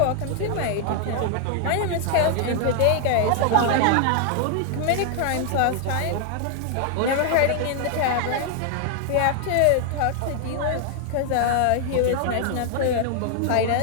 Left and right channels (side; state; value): both; different; correlation 0.00